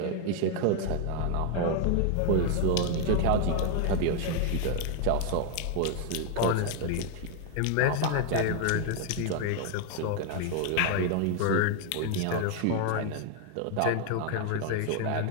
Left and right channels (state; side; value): different; both; correlation 0.00